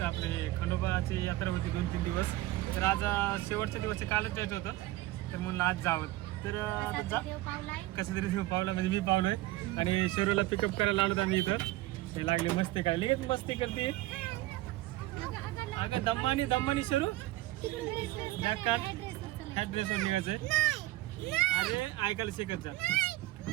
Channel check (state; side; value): quieter; left; 17.6 dB